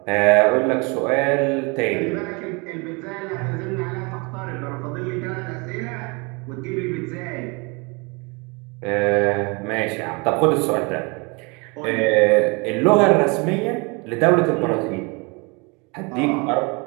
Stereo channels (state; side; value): quieter; left; 29.5 dB